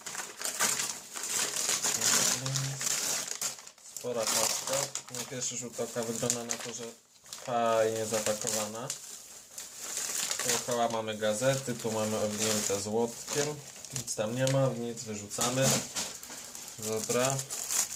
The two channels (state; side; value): identical; both; correlation 1.00